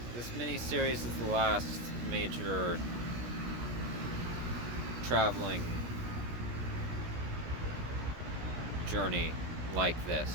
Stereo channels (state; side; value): late; left; 17 ms